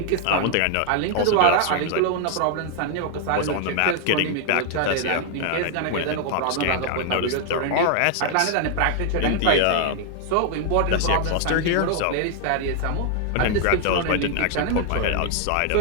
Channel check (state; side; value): different; both; correlation 0.00